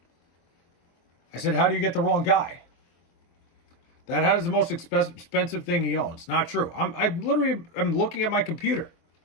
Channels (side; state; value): right; late; 24 ms